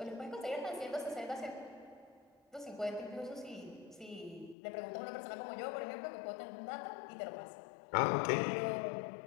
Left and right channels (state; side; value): drops out; right; at 4.5 s